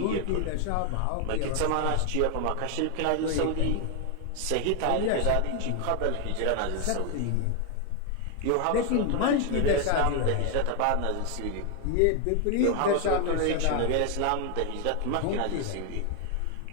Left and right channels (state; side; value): different; both; correlation 0.01